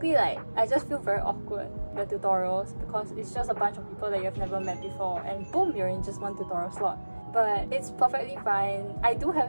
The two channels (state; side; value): inverted; both; correlation -1.00